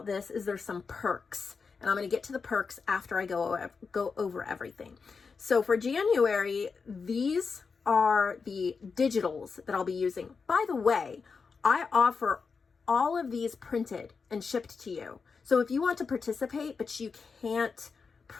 this is there's some perks. And I'm going to get to the perks after I go over everything. So for January, these are the digitals that I'll be using. By the way, I offer all of these printed and shipped to you. So if you want to participate, but you can't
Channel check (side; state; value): right; quieter; 5.1 dB